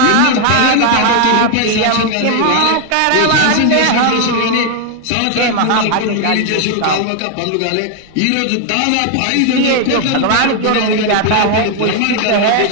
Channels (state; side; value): different; both; correlation 0.00